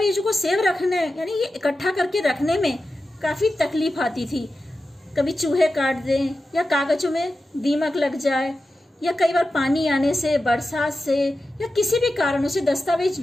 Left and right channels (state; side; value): normal; both; correlation 0.92